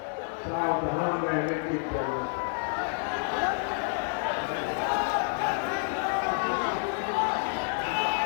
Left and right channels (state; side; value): silent; right; 59 dB below the other